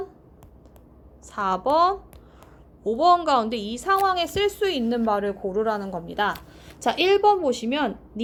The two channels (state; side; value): identical; both; correlation 1.00